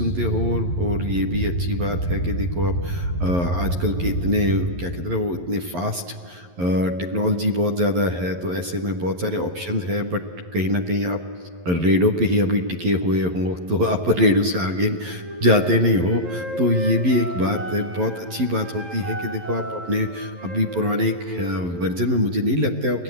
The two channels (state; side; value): late; left; 11 ms